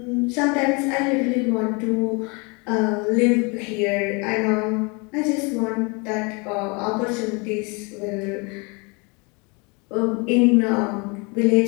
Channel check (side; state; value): right; quieter; 30.3 dB